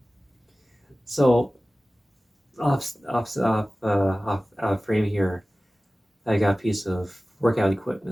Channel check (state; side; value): normal; both; correlation 0.97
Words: So off frame here, I got a piece of workout